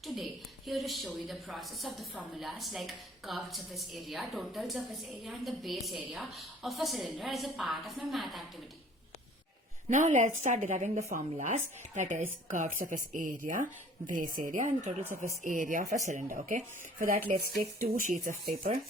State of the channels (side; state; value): both; normal; correlation 0.52